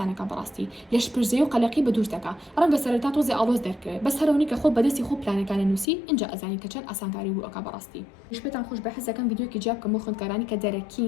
كبراستي ليش برزيو قلقي بدورتكا رنگ سرتاتو زي ألوز درك بس هروني كخو بدسي خو بلاني كان نوسي إنجا أزاني كچن أسان كاري بو كبراستي مش بتان خوش بحس كان فيديو كي جاب كمو خند كاراني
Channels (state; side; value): drops out; right; at 5.9 s